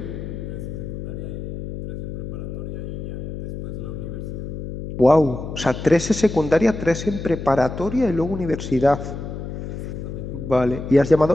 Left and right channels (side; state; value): left; noise; hum, 7 dB below the sound